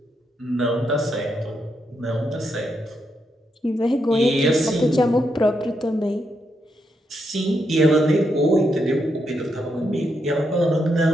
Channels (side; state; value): both; normal; correlation 0.81